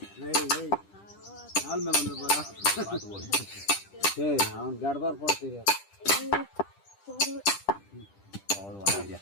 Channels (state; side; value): late; right; 10 ms